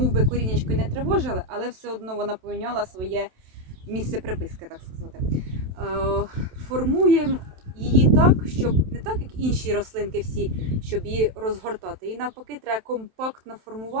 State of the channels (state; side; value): late; left; 27 ms